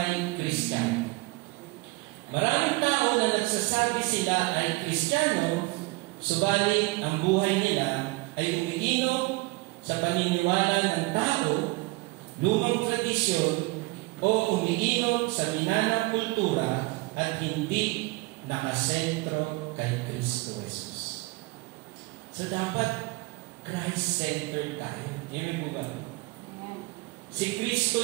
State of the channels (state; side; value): quieter; left; 24.0 dB